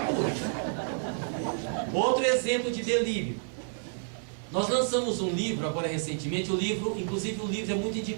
Outro exemplo de delírio. Nós lançamos um livro agora recentemente, inclusive o livro é muito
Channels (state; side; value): silent; left; digital silence